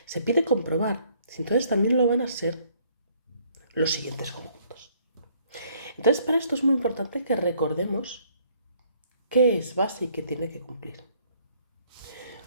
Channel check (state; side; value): inverted; both; correlation -0.64